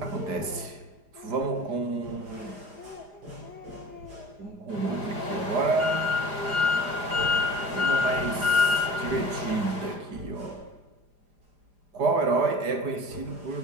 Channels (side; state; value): left; late; 5.0 ms